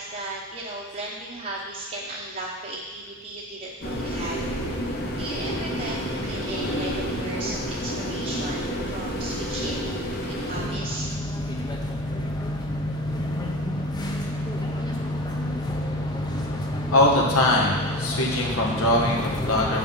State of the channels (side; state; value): both; normal; correlation 0.30